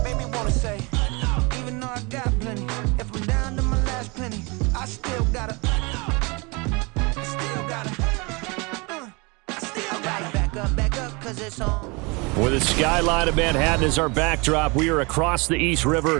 Made me wanna say, even though I got plenty, if I'm down to my last penny, I still gotta back up, cause it's on. With the skyline of Manhattan as our backdrop, we are across the East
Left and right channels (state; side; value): quieter; left; 28.1 dB